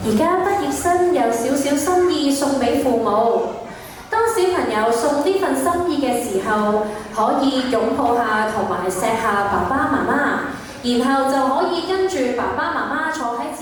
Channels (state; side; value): identical; both; correlation 1.00